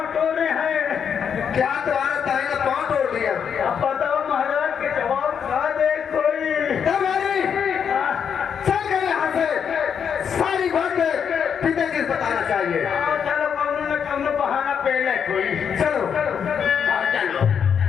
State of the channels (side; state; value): right; quieter; 7.4 dB